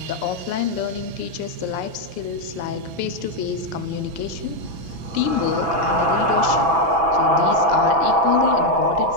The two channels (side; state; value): left; late; 6.1 ms